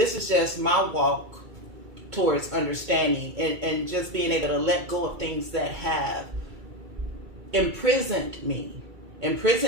is just my walk towards understanding and just being able to let go of things that have imprisoned me,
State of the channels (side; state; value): left; late; 2.3 ms